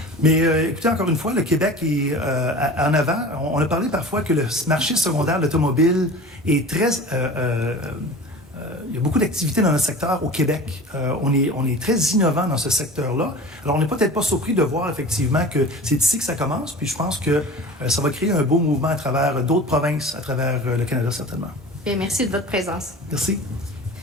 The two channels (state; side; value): normal; both; correlation 0.37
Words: Mais écoutez, encore une fois, le Québec est en avant. On a parlé parfois que le marché secondaire de l'automobile est très... il y a beaucoup d'activités dans notre secteur au Québec. On est très innovant dans ce secteur-là. Alors, on n'est peut-être pas surpris de voir effectivement que c'est ici que ça commence. Puis je pense que ça va créer un beau mouvement à travers d'autres provinces, à travers le Canada, certainement. Bien, merci de votre présence. Merci.